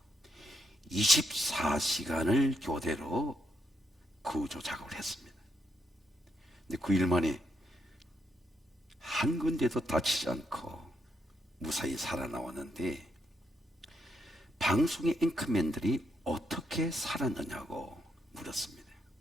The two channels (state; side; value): normal; both; correlation 0.78